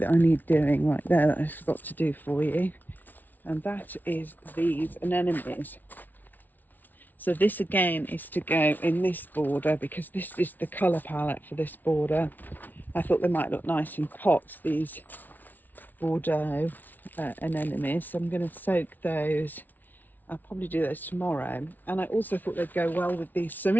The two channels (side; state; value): right; late; 0.084 ms